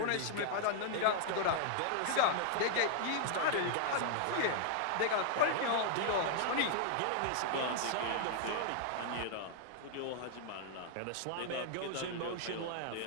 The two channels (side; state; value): both; different; correlation -0.01